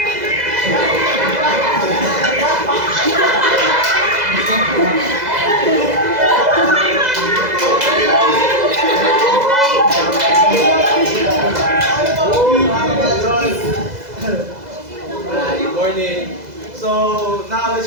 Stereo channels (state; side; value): late; left; 2.0 ms